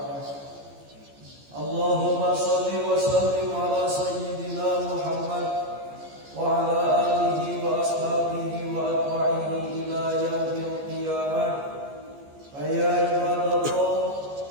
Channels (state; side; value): late; left; 14 ms